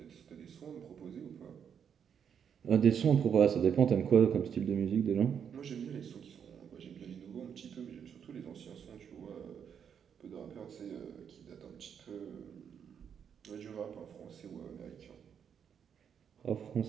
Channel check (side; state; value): left; quieter; 7.8 dB